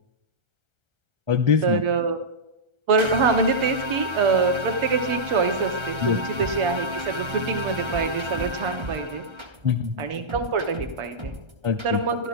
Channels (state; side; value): late; left; 1.3 ms